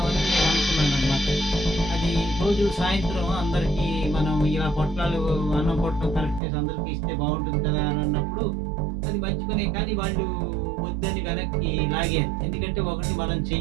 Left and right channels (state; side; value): drops out; left; at 6.4 s